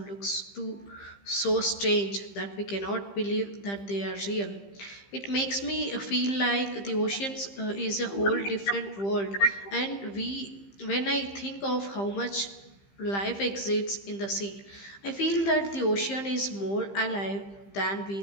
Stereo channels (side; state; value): right; late; 15 ms